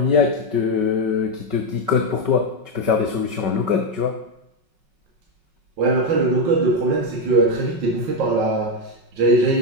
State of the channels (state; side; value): late; left; 5.2 ms